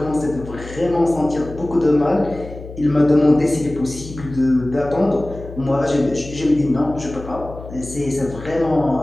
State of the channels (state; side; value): noise; left; hum, 13 dB below the sound